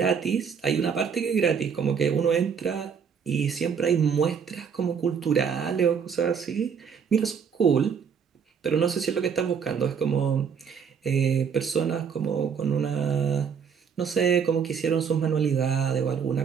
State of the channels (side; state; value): left; quieter; 6.8 dB